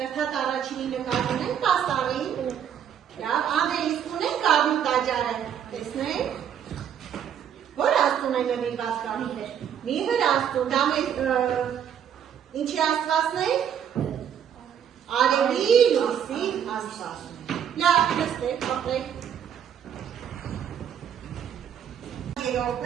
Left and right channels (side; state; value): left; quieter; 8.9 dB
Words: առաջինի նկար ունենք պաստառին։ Լավ, Անդրեյ, իսկ ունենք Գարնու տաճարը։ Տեսնենք։ Որ աստծուն է նվիրված կա։ Միհր աստծուն, դա մեր ինչի աստվածն է։ Արևի լույսի աստվածն է։ Լավ, նստեք, ապրեք։ Երրորդն